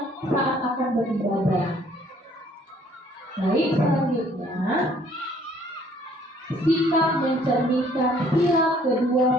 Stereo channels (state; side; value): normal; both; correlation 0.60